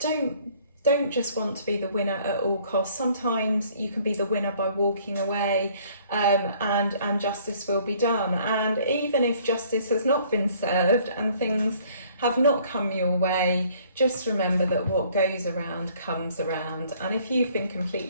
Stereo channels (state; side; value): inverted; both; correlation -0.58